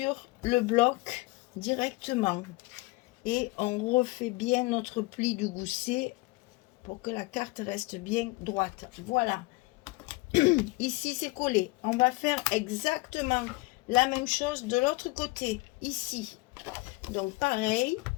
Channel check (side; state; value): right; quieter; 22.9 dB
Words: le bloc directement et on refait bien notre pli du gousset pour que la carte reste bien droite. Voilà. Ici c'est collé. On va faire exactement la même chose de l'autre côté ici. Donc pareil,